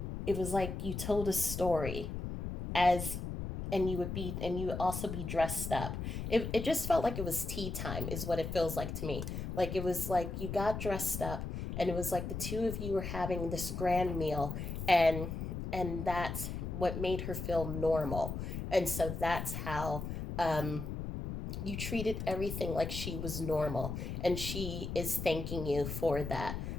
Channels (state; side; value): noise; left; rumble, 5 dB below the sound